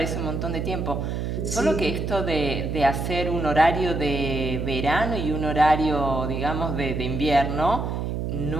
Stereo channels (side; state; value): right; noise; hum, 2 dB below the sound